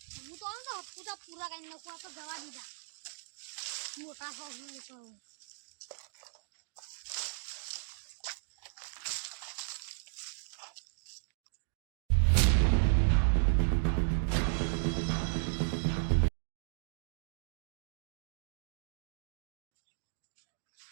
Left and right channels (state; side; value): silent; left; digital silence